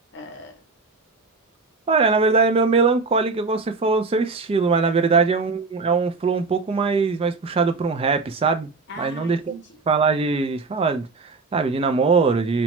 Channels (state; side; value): quieter; left; 4.1 dB